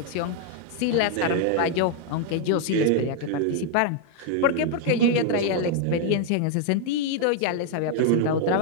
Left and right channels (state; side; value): different; both; correlation 0.00